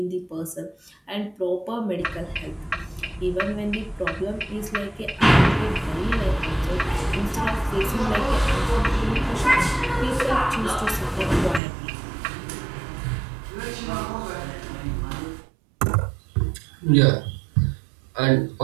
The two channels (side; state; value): left; drops out; at 11.6 s